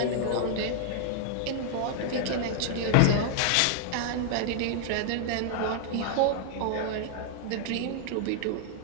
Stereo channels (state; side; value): different; both; correlation 0.00